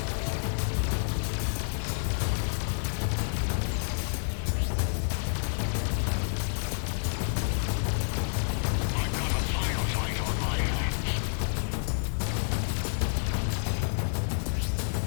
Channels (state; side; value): silent; right; 58 dB below the other